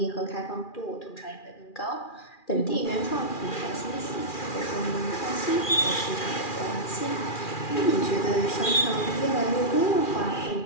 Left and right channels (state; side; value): late; right; 2.4 ms